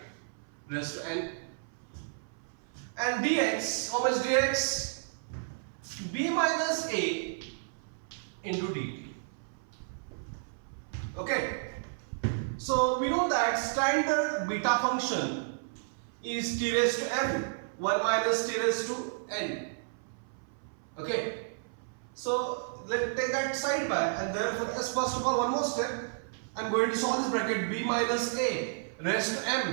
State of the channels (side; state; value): left; silent; 55 dB below the other